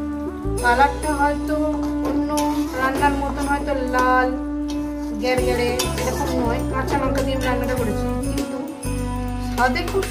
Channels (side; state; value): both; identical; correlation 1.00